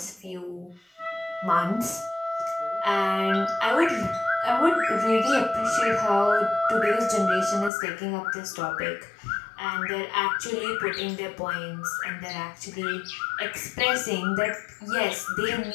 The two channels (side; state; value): right; drops out; at 7.7 s